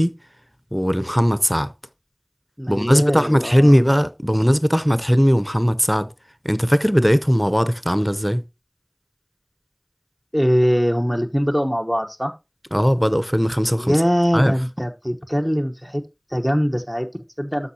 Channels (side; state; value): both; identical; correlation 1.00